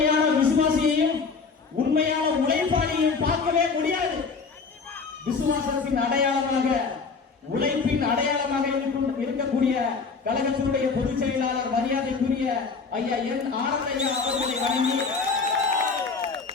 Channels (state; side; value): quieter; right; 4.9 dB